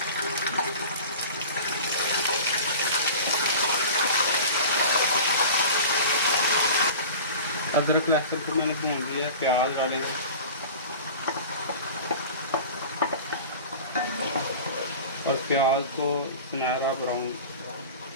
अदरक लहसुन को मैंने भून लिया है। प्याज डालेंगे, और प्याज को सुनहरा ब्राउन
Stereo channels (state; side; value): inverted; both; correlation -0.37